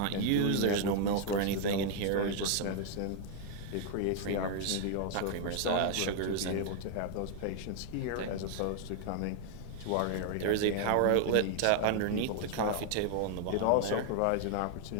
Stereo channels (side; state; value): both; different; correlation 0.00